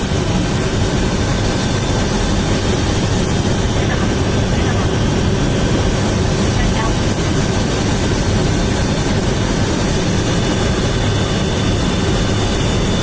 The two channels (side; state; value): both; identical; correlation 1.00